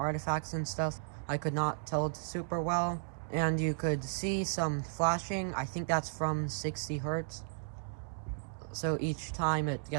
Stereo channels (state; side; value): silent; left; digital silence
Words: and stuff. I could not tell super well. And you could see some flashing. I think that's from 60 hertz. So each time it